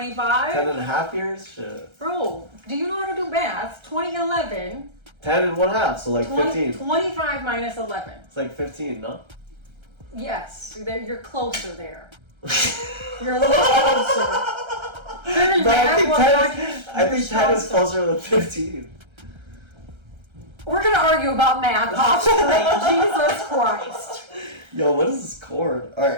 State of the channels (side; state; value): left; late; 1.3 ms